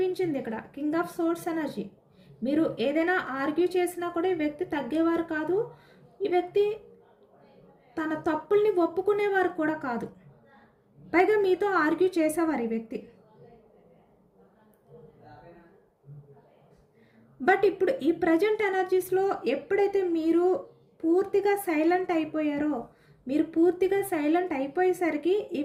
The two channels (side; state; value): both; identical; correlation 1.00